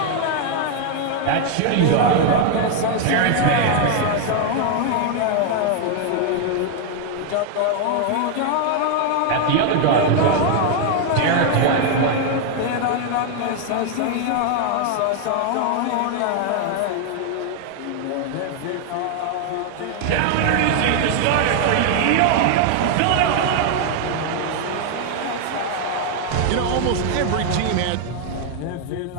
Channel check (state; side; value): different; both; correlation 0.00